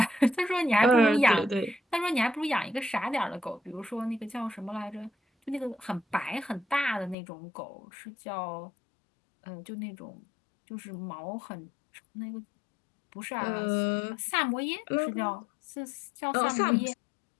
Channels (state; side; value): drops out; right; at 7.2 s